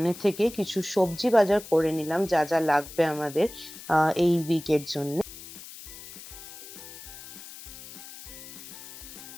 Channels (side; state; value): left; noise; hiss, 15 dB below the sound